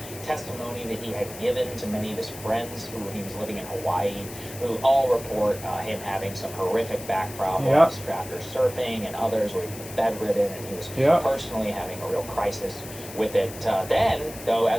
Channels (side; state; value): left; noise; hiss, 14 dB below the sound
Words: testimony that he had given to many of his friends who he was living in Hawaii, who all report him having some horrific back problems after surfing, and others were bedridden, and he was personally having a real crisis with it. Then, though,